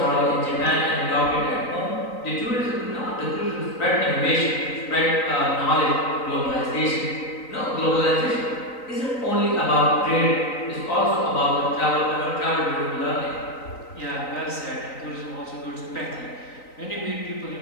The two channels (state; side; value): late; right; 3.9 ms